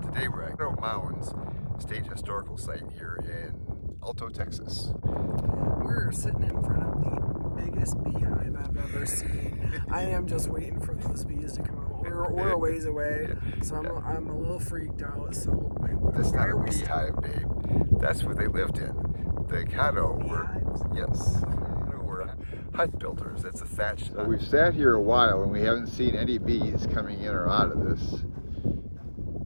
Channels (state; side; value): inverted; both; correlation -1.00